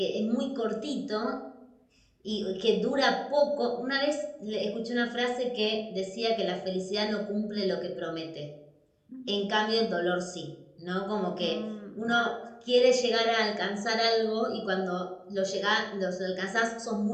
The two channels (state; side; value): identical; both; correlation 1.00